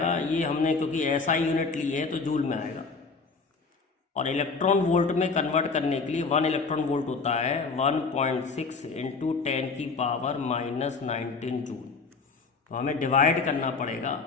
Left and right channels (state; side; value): quieter; right; 4.6 dB